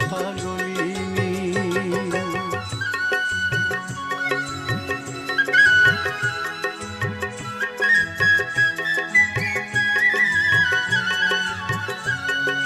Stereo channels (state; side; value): identical; both; correlation 1.00